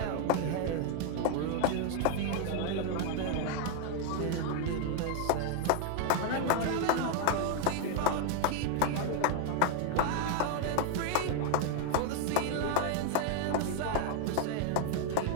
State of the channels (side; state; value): both; different; correlation 0.00